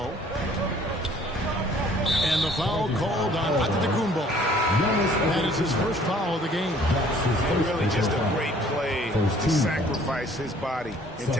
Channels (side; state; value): both; normal; correlation 0.56